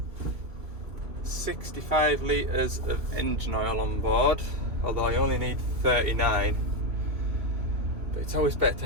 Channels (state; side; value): late; left; 3.0 ms